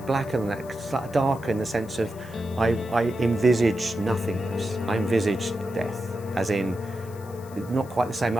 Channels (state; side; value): noise; left; hiss, 22 dB below the sound